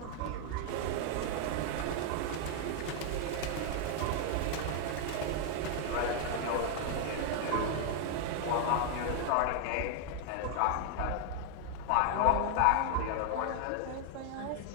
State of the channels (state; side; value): different; both; correlation 0.00